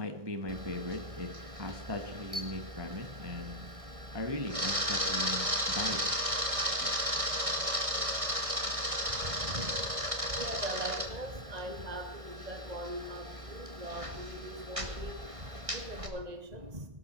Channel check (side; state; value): left; late; 1.6 ms